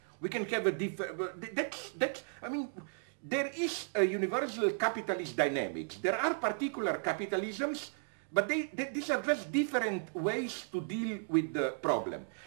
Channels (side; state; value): left; silent; digital silence